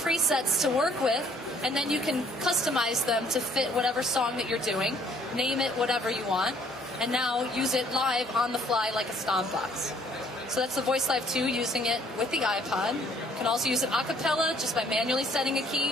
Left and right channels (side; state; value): both; normal; correlation 0.61